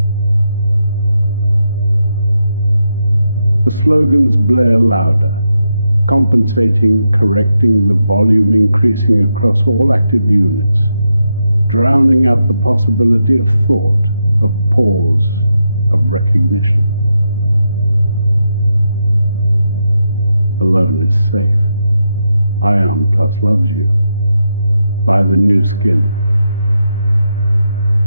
The slogans blare louder, compensating, correcting, the volume increasing across all active units, drowning out the possibility of thought, of pause, of recognition. Alone is safe. Ion Plus loves you. Buy the new skin.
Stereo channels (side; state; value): both; inverted; correlation -0.84